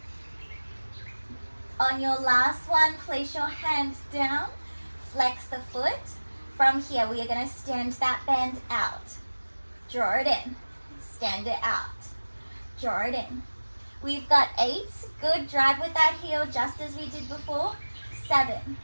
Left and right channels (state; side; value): inverted; both; correlation -1.00